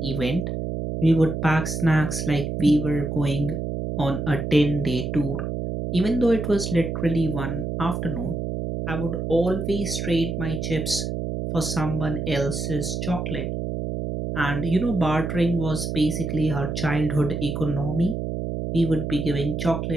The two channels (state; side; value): noise; right; hum, 3 dB below the sound